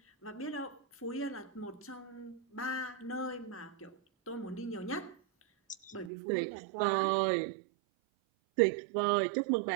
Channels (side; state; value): left; drops out; at 6.1 s